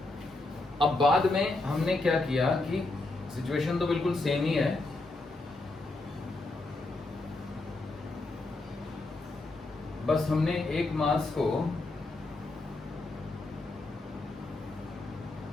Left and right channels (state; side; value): quieter; right; 3.0 dB